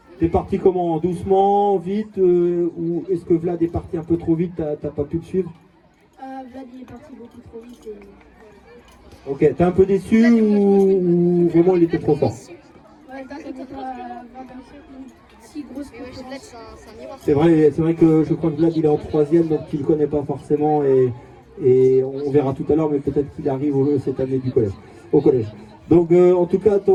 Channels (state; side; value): identical; both; correlation 1.00